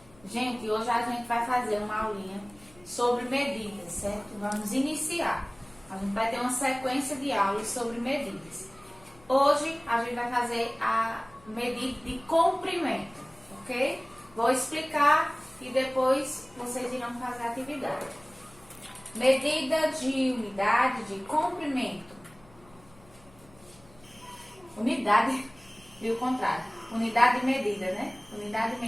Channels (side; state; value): left; noise; hum, 26 dB below the sound